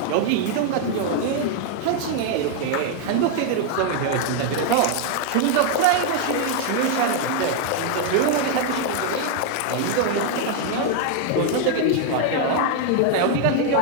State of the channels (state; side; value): different; both; correlation 0.00